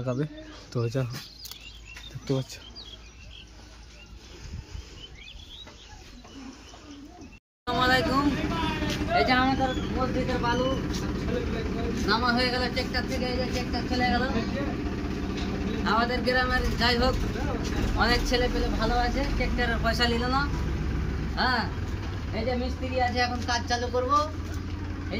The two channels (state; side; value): identical; both; correlation 1.00